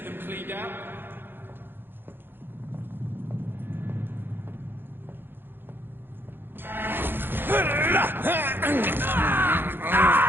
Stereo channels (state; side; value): late; left; 0.10 ms